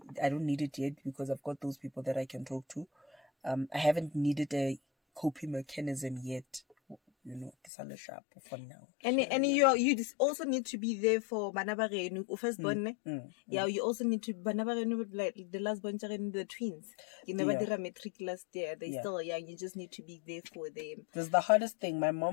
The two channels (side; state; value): right; drops out; at 7.7 s